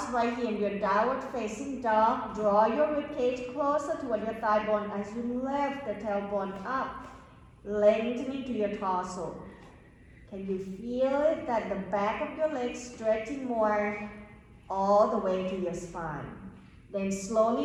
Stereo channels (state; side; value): identical; both; correlation 1.00